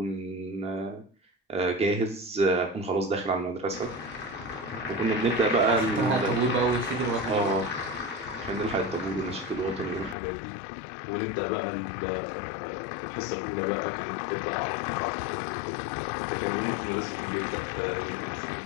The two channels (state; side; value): drops out; right; at 10.2 s